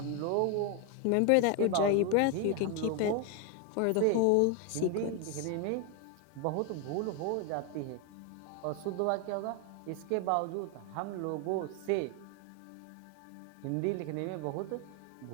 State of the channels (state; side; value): different; both; correlation 0.01